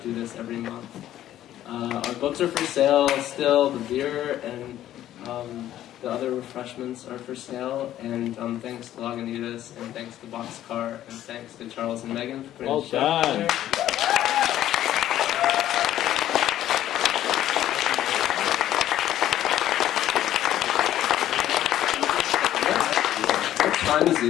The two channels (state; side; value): quieter; right; 12.5 dB